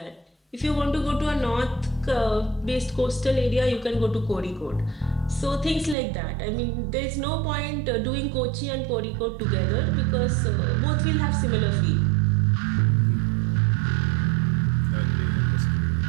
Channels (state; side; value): drops out; left; at 6.0 s